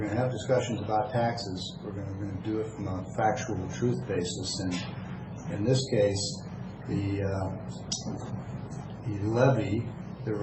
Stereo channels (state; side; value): identical; both; correlation 1.00